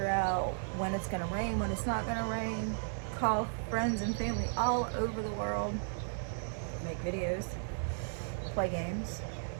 out when it's going to rain, when it's not going to rain, call friends and family all over the world, make videos, play games,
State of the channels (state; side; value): silent; left; digital silence